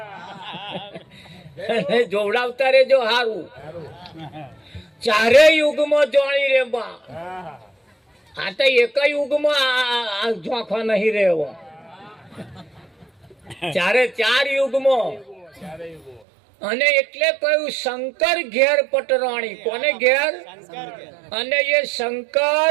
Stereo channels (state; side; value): drops out; left; at 16.2 s